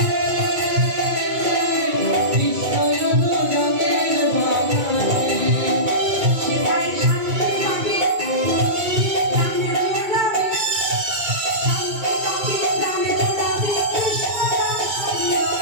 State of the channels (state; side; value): late; left; 2.2 ms